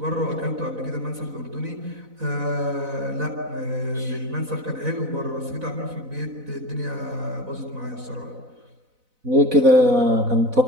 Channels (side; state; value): left; late; 4.0 ms